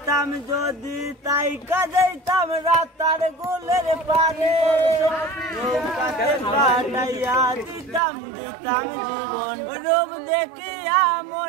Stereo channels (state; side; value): drops out; left; at 8.0 s